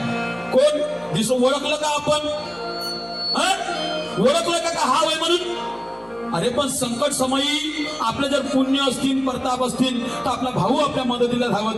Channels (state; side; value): noise; left; hum, 28 dB below the sound